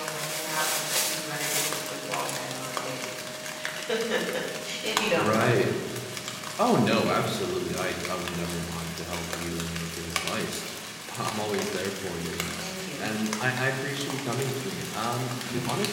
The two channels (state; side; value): identical; both; correlation 1.00